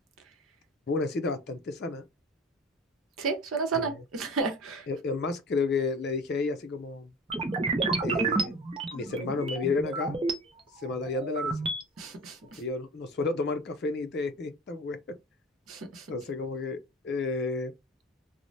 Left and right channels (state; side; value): normal; both; correlation 0.37